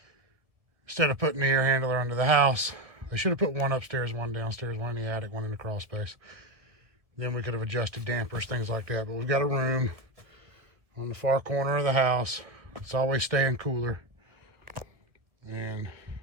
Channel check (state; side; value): late; left; 1.5 ms